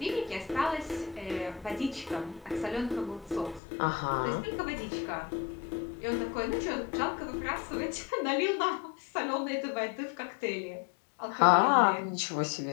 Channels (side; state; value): right; drops out; at 3.6 s